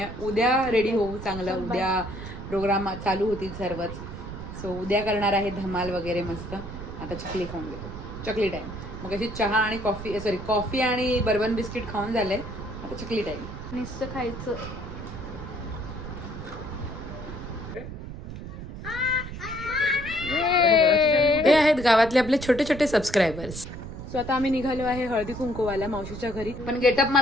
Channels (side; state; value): right; noise; rumble, 10 dB below the sound